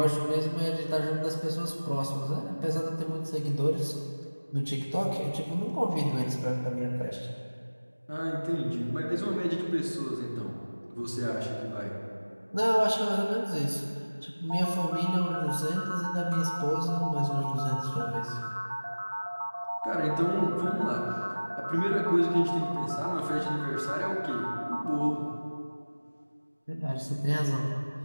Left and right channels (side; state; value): both; inverted; correlation -1.00